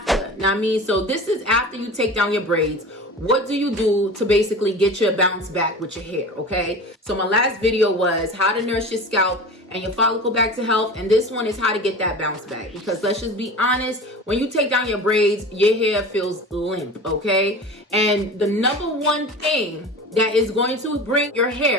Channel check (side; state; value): both; normal; correlation 0.34